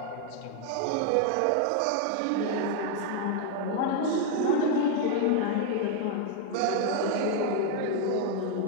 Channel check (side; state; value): both; different; correlation 0.01